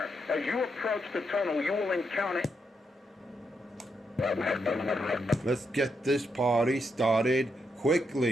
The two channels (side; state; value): both; normal; correlation 0.81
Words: as you approach the tunnel, you will encounter... Let's get this party started